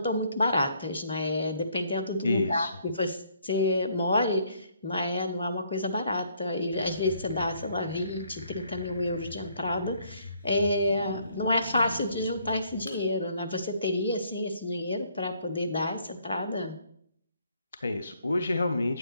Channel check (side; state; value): both; inverted; correlation -0.66